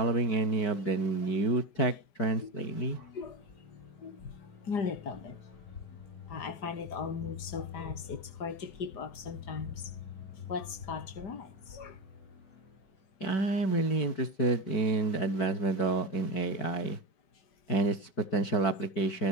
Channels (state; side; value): late; right; 5.0 ms